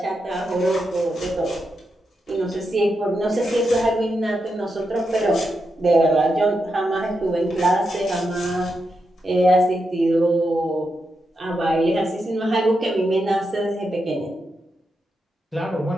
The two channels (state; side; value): normal; both; correlation 0.85